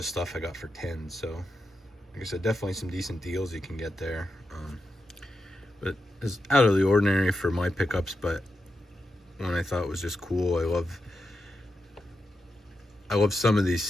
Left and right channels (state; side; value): normal; both; correlation 0.88